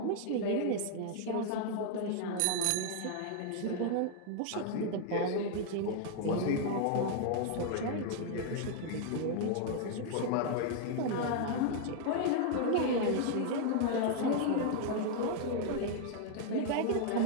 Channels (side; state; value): both; different; correlation -0.01